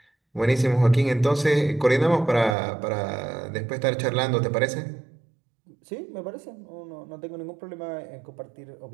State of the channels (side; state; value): left; drops out; at 2.6 s